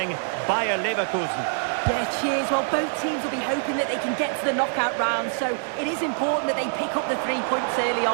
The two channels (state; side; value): silent; left; 62 dB below the other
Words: Bayer Leverkusen. Yeah, cheers. Well, both teams will be hoping that they can get to the knockout round, so it is important that they pick up the 3 points early